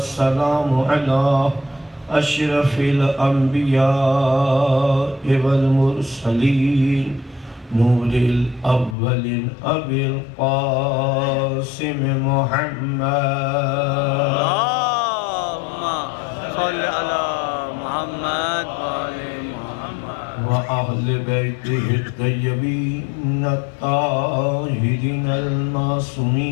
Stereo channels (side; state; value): right; drops out; at 9.0 s